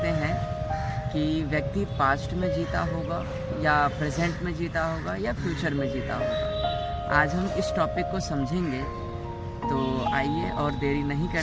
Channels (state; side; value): identical; both; correlation 1.00